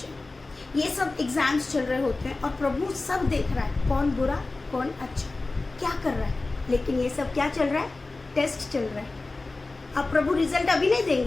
है। ये सब एग्जाम्स चल रहे होते हैं और प्रभु सब देख रहा है, कौन बुरा कौन अच्छा क्या कर रहा है। लेकिन ये सब क्या चल रहा है, टेस्ट चल रहा है। अब प्रभु रिजल्ट अभी नहीं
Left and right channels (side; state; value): right; quieter; 3.3 dB